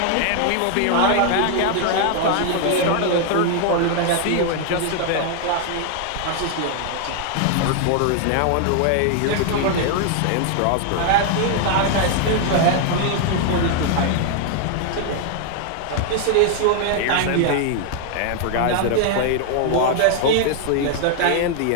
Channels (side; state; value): both; different; correlation 0.00